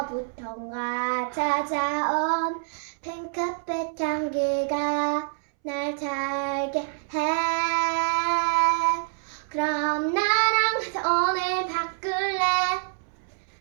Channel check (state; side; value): silent; left; 61 dB below the other